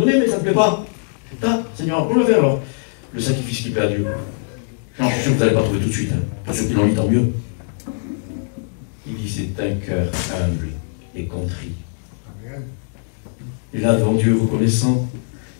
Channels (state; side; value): silent; right; 65 dB below the other